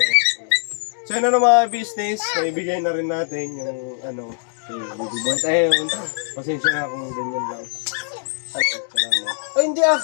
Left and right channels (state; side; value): silent; right; digital silence